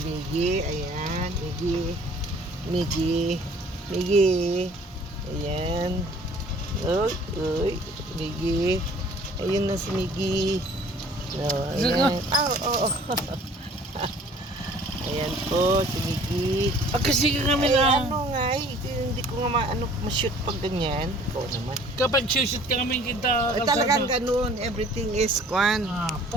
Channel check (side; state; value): both; normal; correlation 0.53